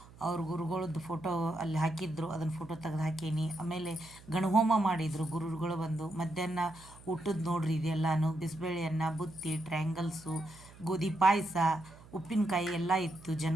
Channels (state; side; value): noise; right; hum, 21 dB below the sound